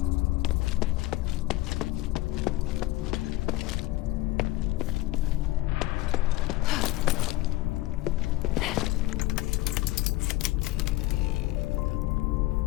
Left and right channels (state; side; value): quieter; right; 17.4 dB